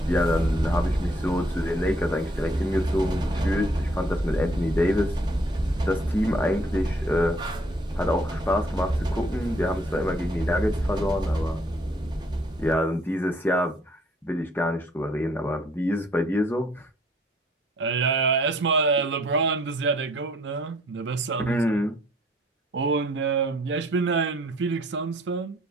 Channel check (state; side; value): normal; both; correlation 0.63